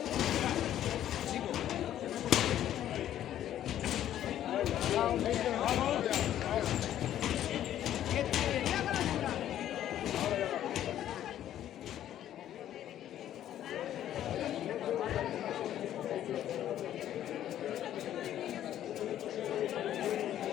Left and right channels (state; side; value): quieter; right; 11.6 dB